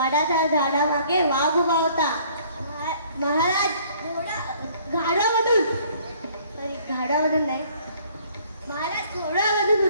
झाडामागे वाघ उभा होता. महाराज घाडामधून नाही, महाराज घोड्यामधून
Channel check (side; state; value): both; inverted; correlation -0.58